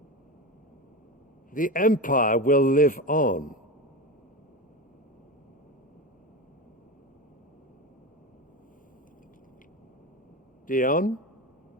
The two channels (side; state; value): both; normal; correlation 0.22